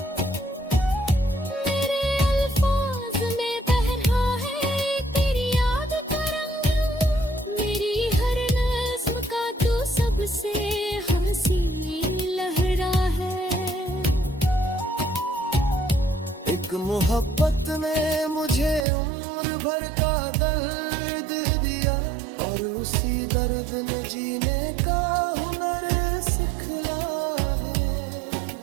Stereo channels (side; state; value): left; drops out; at 18.9 s